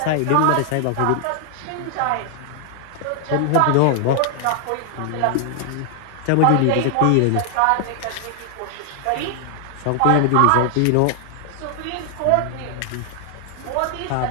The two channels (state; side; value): different; both; correlation 0.00